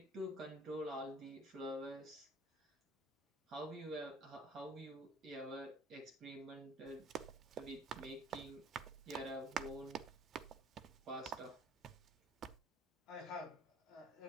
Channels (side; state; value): both; normal; correlation 0.54